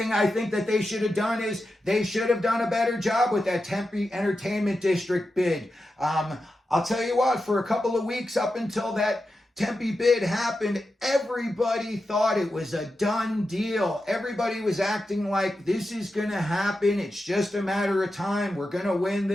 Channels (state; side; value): normal; both; correlation 0.90